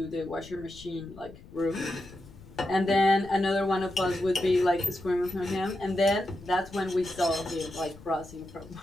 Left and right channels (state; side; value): noise; left; rumble, 20 dB below the sound